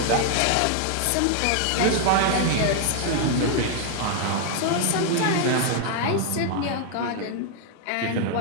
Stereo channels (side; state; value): both; different; correlation 0.00